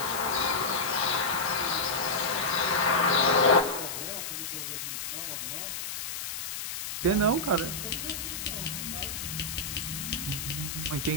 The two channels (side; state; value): left; noise; hiss, 5 dB below the sound